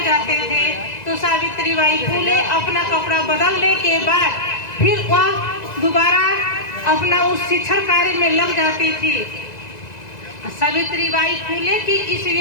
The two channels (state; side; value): late; right; 1.9 ms